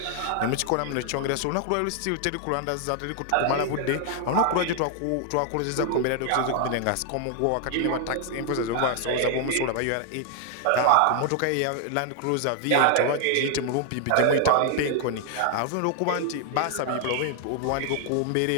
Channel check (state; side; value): different; both; correlation 0.00